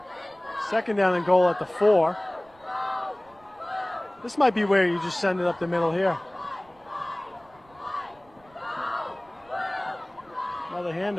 Second down and goal at the 4. This might be where you just send it up the middle here. Another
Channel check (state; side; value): noise; right; rumble, 29 dB below the sound